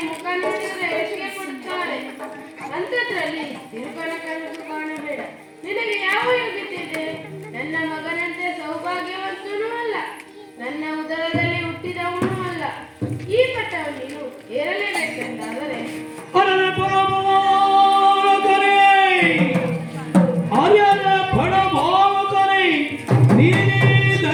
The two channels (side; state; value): both; identical; correlation 1.00